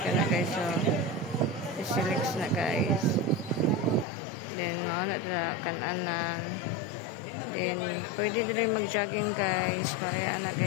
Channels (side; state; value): right; drops out; at 4.0 s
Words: kana guys. So Sisilix na guys. Then mao na dira kan-anan. Then pwede din mag-jogging guys. Kaya na